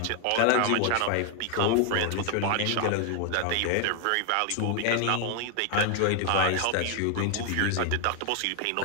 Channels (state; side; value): different; both; correlation 0.00